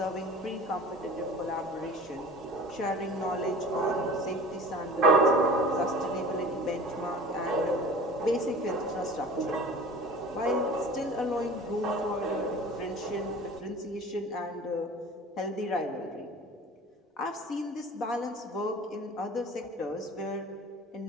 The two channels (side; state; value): both; normal; correlation 0.42